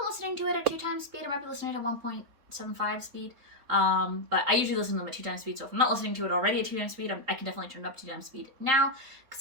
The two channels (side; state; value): left; late; 3.8 ms